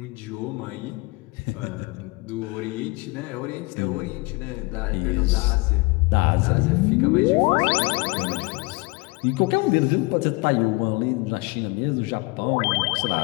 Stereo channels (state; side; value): quieter; right; 25.6 dB